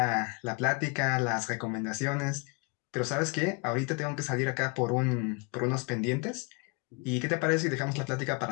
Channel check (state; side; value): quieter; right; 32.4 dB